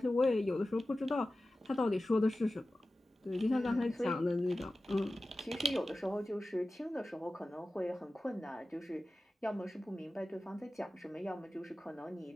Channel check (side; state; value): both; normal; correlation 0.95